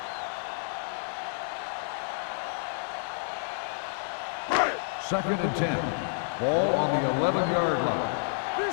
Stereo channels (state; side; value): silent; right; 58 dB below the other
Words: Second and 10. Ball on the 11-yard line. Do